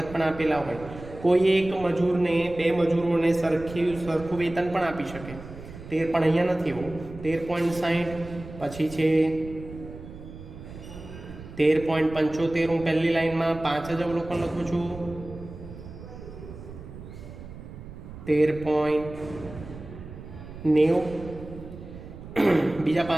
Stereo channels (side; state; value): right; noise; rumble, 14 dB below the sound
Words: પણ આપેલા હોય. કોઈ એક મજૂરને, બે મજૂરોને સરખું વેતન પણ આપી શકે. 13 પણ અહીંયા નથી એવું. 13.60 પછી છે 13.75. હું પહેલી લાઈનમાં 5 જ અવલોકન લખું છું. 13.90. બીજા